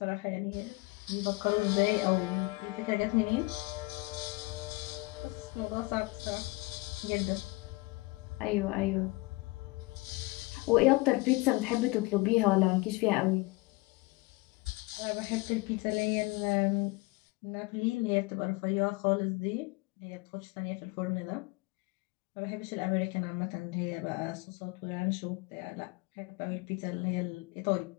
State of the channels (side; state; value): right; quieter; 24.2 dB